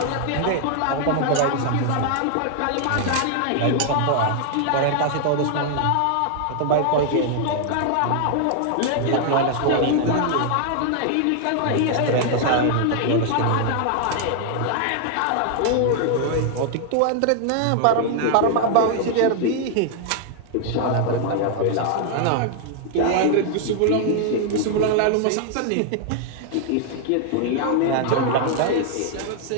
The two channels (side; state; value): both; different; correlation 0.00